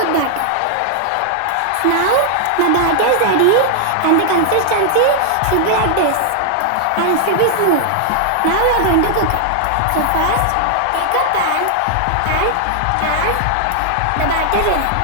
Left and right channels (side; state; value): both; different; correlation -0.01